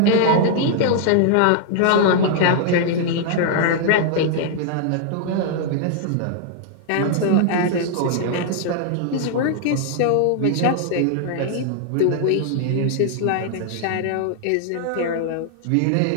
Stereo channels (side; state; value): both; different; correlation 0.00